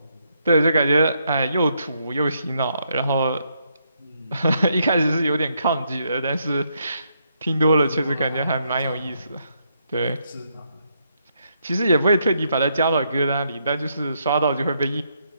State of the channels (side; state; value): both; inverted; correlation -0.76